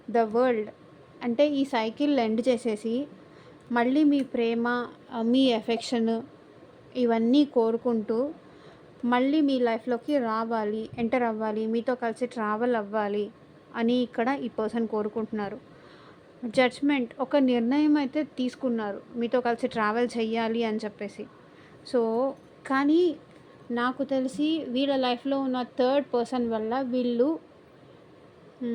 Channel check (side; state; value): both; identical; correlation 1.00